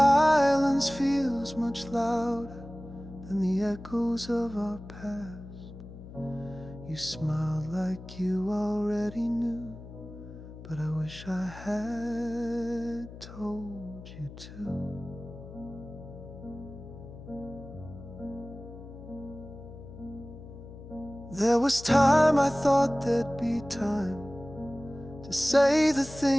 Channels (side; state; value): left; noise; hum, 15 dB below the sound